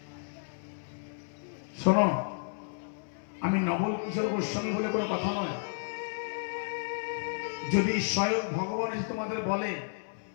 শোনো, আমি নবল কিশোর গোস্বামী বলে কোনো কথা নয়। যদি স্বয়ং ভগবান এসে তোমাদের বলে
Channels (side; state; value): right; silent; 56 dB below the other